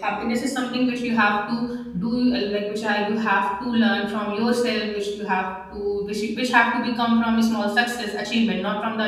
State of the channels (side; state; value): both; identical; correlation 1.00